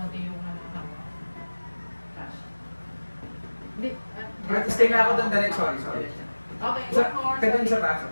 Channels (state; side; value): inverted; both; correlation -1.00